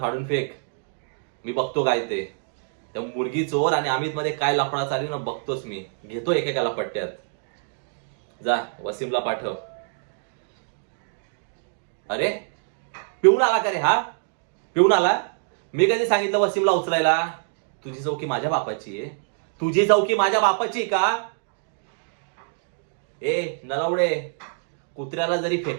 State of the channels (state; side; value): silent; left; digital silence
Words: फेक. मी बघतो काय ते. त्या मुलगी चोर आणि अमित मध्ये काय लफडा चालू ना बघतोच मी. घेतो एकेकाला पट्ट्यात. जा वसीमला पाठव. अरे पिऊन आला का रे हा? पिऊन आला? मी कधी सांगितलं वसीमला उचलायला? तुझी चौकी माझ्या बापाची आहे. तुझी चौकी माझ्या बापाची का? ए नलावडे, कुत्र्याला जरी